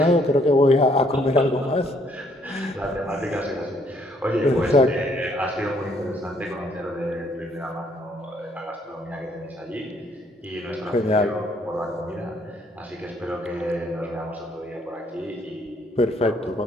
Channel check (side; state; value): both; normal; correlation 0.67